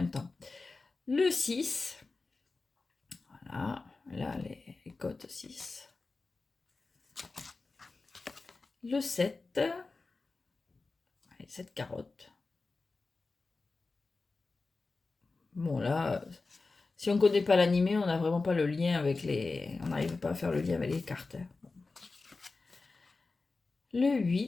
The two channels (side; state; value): right; quieter; 3.8 dB